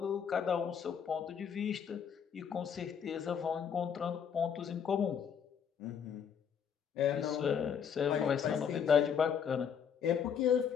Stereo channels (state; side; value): quieter; right; 7.5 dB